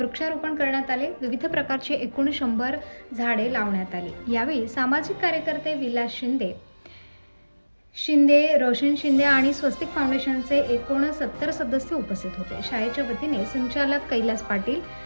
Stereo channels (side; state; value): both; inverted; correlation -1.00